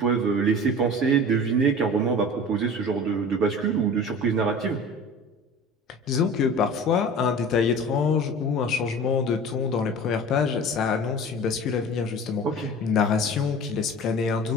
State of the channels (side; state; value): both; normal; correlation 0.38